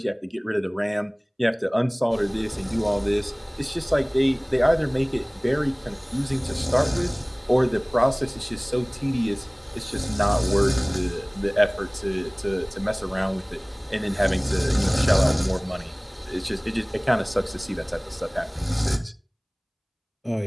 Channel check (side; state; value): both; identical; correlation 1.00